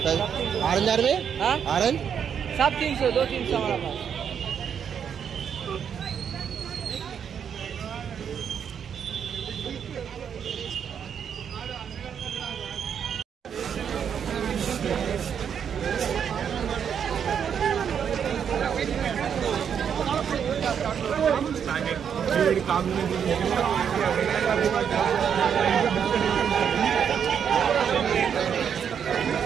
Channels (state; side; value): quieter; left; 7.9 dB